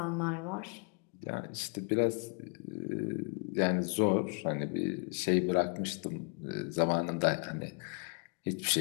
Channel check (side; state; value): right; quieter; 35.3 dB